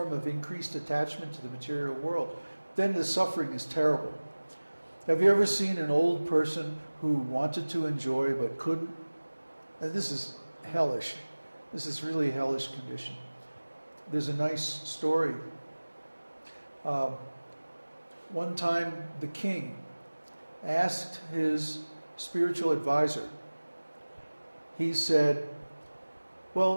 of increased attachment to the material world, then the suffering is terrible. Have you ever seen an old person who wanted to enjoy but couldn't? And this is hellish. This is really a hellish condition. There's a nice story. One time the king asked his spiritual advisor, he said,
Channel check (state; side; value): inverted; both; correlation -1.00